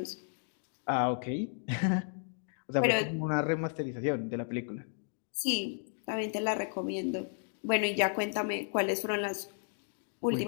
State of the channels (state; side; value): silent; right; digital silence